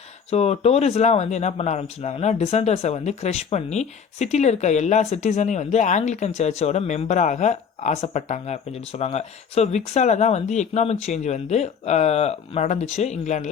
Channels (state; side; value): quieter; right; 6.7 dB